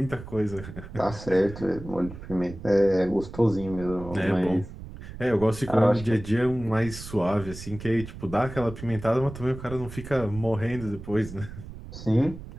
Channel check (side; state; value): right; noise; rumble, 13 dB below the sound